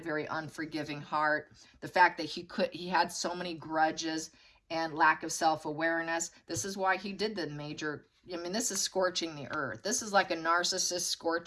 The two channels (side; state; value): both; identical; correlation 1.00